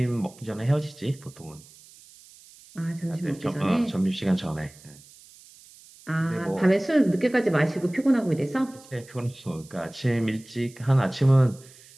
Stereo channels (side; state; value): right; noise; hiss, 23 dB below the sound